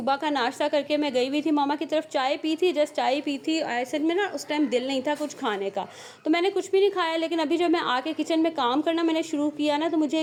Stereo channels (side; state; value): both; identical; correlation 1.00